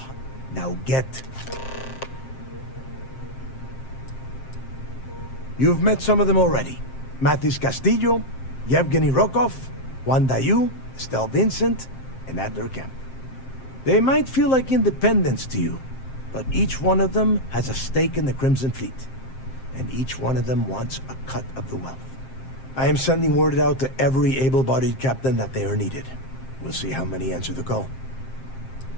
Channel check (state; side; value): late; right; 7.6 ms